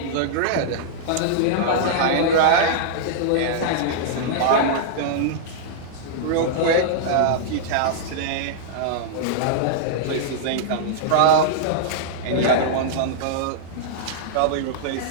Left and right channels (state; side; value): different; both; correlation -0.02